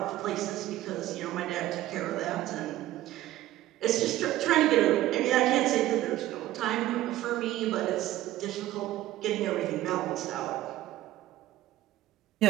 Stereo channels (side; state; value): left; quieter; 14.9 dB